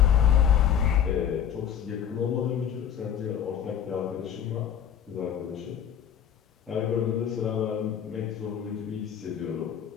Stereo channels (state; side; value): quieter; right; 9.0 dB